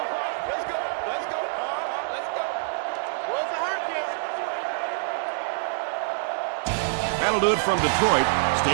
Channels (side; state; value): left; silent; digital silence